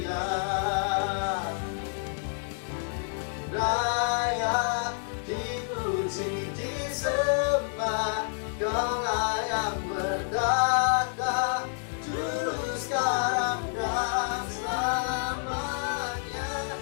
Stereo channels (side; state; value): right; silent; 59 dB below the other